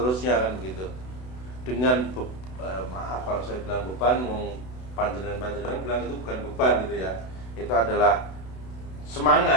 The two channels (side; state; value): right; late; 32 ms